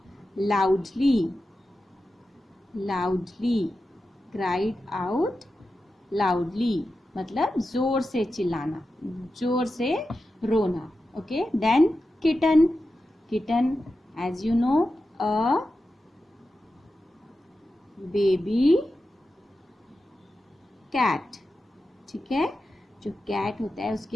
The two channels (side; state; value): both; normal; correlation 0.91